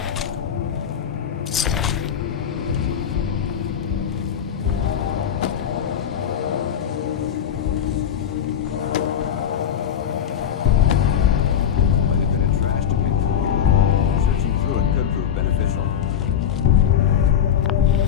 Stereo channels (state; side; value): quieter; right; 8.9 dB